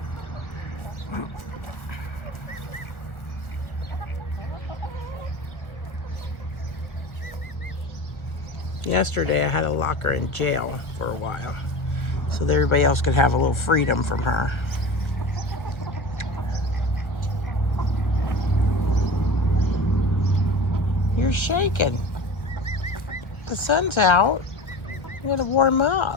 Yesterday I had to lock her in jail for a while so that everybody else could have a little freedom from her. You're shaking. The sun's out. You gotta warm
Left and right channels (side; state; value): right; late; 1.6 ms